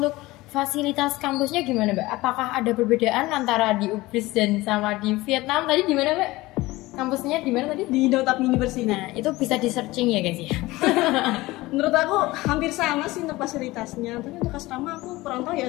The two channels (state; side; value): quieter; right; 19.6 dB